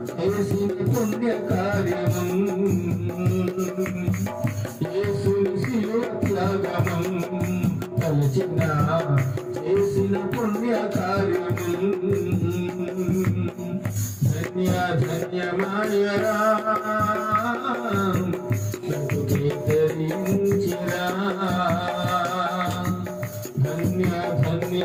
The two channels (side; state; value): both; identical; correlation 1.00